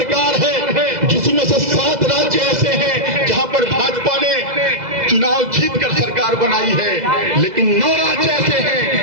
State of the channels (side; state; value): left; late; 2.0 ms